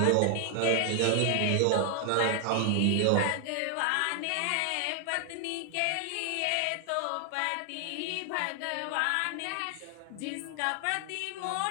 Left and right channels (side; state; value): both; different; correlation 0.00